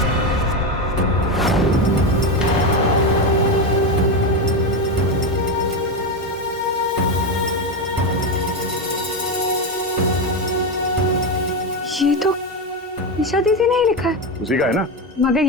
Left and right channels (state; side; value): normal; both; correlation 0.13